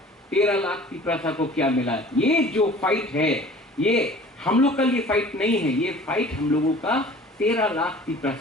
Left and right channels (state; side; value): normal; both; correlation 0.46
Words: 13 लाख तिपरासा को क्या मिला? ये जो फाइट है, ये हम लोग का लिए फाइट नहीं है, ये फाइट हम लोगों का 13 लाख